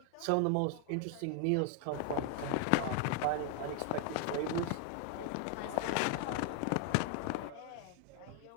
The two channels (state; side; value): different; both; correlation 0.00